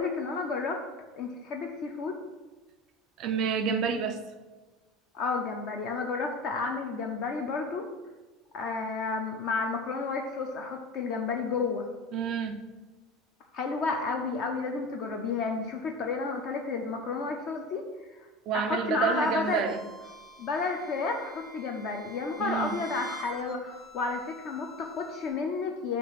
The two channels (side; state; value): both; normal; correlation 0.32